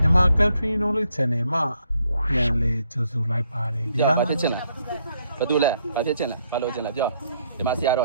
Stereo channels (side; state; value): both; inverted; correlation -0.72